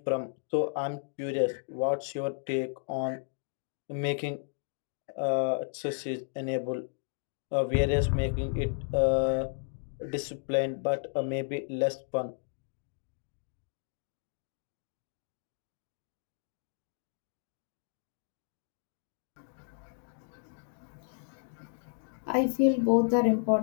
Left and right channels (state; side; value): silent; right; digital silence